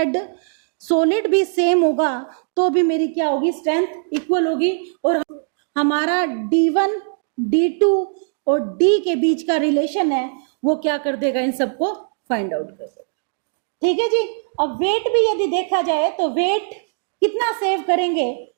सॉलिड भी सेम होगा तो भी मेरी क्या होगी, स्ट्रेंथ इक्वल होगी, और हमारा D1 D2 और D के बीच का रिलेशन है वो क्या कर देगा, इन सबको फाइंड आउट कर देगा, ठीक है जी। अब वेट भी यदि देखा जाए तो वेट कितना सेव करेंगे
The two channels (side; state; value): left; silent; digital silence